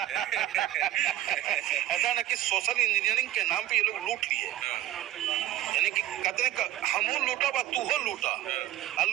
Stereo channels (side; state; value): left; quieter; 13.9 dB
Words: ऐसा ना कि सोशल इंजीनियरिंग के नाम पे ये लोग लूट लिए, यानी कि कहते हमू लूटा बा तू हो लूटा, और